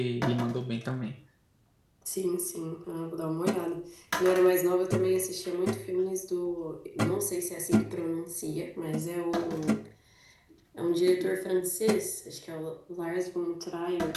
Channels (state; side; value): identical; both; correlation 1.00